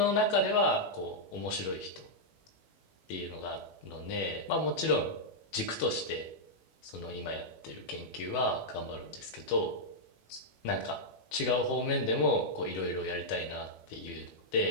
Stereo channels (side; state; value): right; late; 18 ms